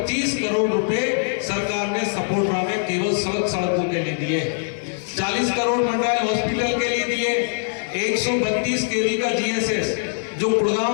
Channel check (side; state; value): right; silent; digital silence